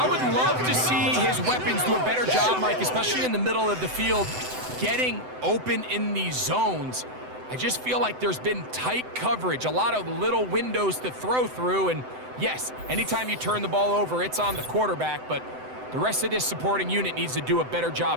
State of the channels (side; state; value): left; late; 7.9 ms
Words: would love to see his weapons do a better job, Mike, especially in the middle of the field, getting open in these zones. I just feel like there's been tight coverage, a lot of little windows to throw through, and yes, anytime you turn the ball over, it's on the quarterback, but the rest of this supporting unit needs to do a better